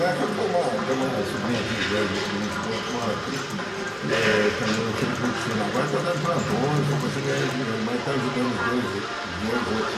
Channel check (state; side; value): identical; both; correlation 1.00